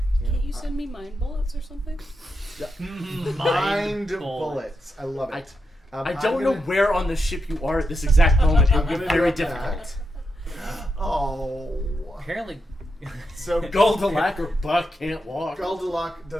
Can't you send me mind bullets or something? Yeah. Mind bullets. I love it. I don't know where on the ship you are at this exact moment. It would be very difficult. Oh. Apparently, So Goldalac or Buck can't walk. Goldalac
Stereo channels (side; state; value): both; normal; correlation 0.85